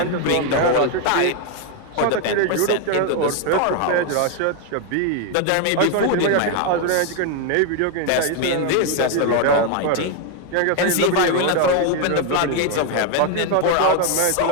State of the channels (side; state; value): both; different; correlation 0.01